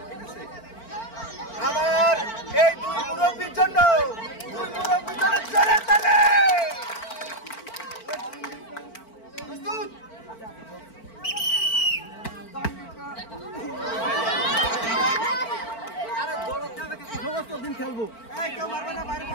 আমার এই দুই মুরব্বীর জন্য জোরে তালি। প্রস্তুত? সমস্ত দিন খেলবো, কেউ মারবে না, বাইরে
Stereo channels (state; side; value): late; right; 4.4 ms